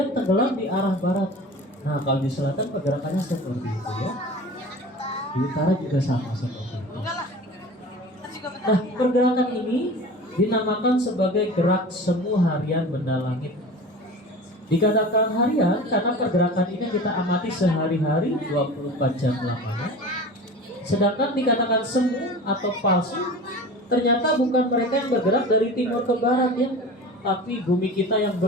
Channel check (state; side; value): normal; both; correlation 0.36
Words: tenggelam di arah barat. Nah, kalau di selatan pergerakannya seperti itu ya. Di utara juga sama seperti itu. Nah, pergerakan ini dinamakan sebagai gerak semu harian benda langit. Dikatakan harian karena pergerakan ini kita amati sehari-hari 24 jam lamanya. Sedangkan dikatakan semu atau palsu, ternyata bukan mereka yang bergerak dari timur ke barat ya, tapi bumi kita yang